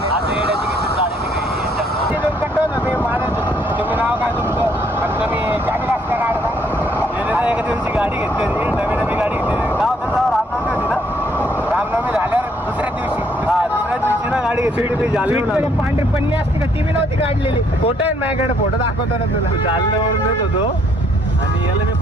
तुम्ही नाव काय तुमचं आणि तुम्ही गाडी वाजता काढता एका दिवशी गाडी घेतली नवी गाडी घेतली नाव त्याचं रामनवमी होती ना रामनवमी झाल्यावर दुसऱ्या दिवशी दुसऱ्या दिवशी ना गाडी घेतली मी जालन्यावरून पांढरी पन्नी असते का ती बी नव्हती काढलेली फोटो आहे माझ्याकडे फोटो दाखवतो ना तुला जालन्यावरून येत होतो आणि याला मी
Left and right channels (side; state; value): both; normal; correlation 0.67